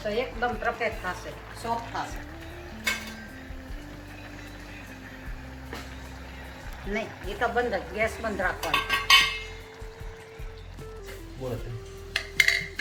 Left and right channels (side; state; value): both; identical; correlation 1.00